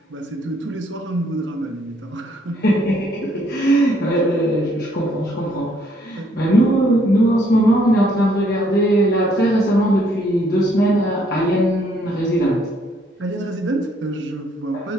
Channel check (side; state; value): both; normal; correlation 0.67